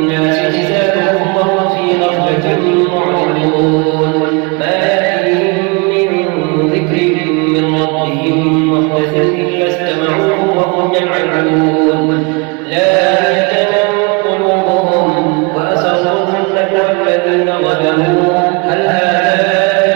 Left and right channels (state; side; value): quieter; left; 30.5 dB